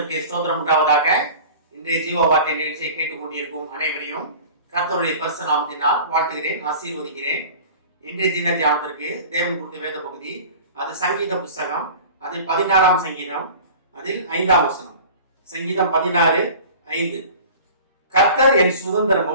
ஸ்தோத்திரம் உண்டாவதாக. இன்றைய ஜீவ வார்த்தை நிகழ்ச்சியை கேட்டுக்கொண்டிருக்கும் அனைவரையும் கர்த்தருடைய பரிசு நாமத்தினால் வாழ்த்துகிறேன், ஆசீர்வதிக்கிறேன். இன்றைய தின தியானத்திற்கு தேவன் கொடுத்த வேத பகுதி, அது சங்கீத புஸ்தகம், அதில் 16ஆம் சங்கீதம், அதில் 5ஆம் வசனம். சங்கீதம் 16:5. கர்த்தர் என்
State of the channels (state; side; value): inverted; both; correlation -0.40